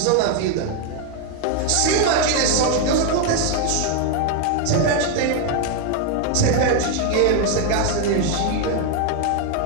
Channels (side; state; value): both; different; correlation 0.01